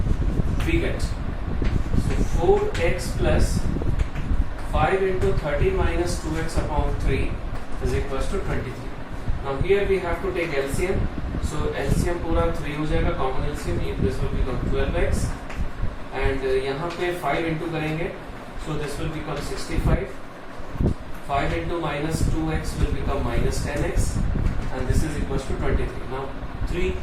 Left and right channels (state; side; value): identical; both; correlation 1.00